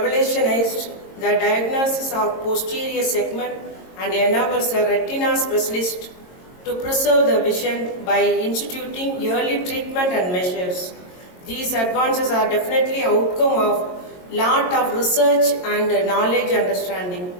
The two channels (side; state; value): right; late; 22 ms